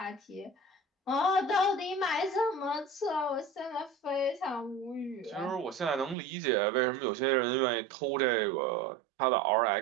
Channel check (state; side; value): drops out; left; at 6.2 s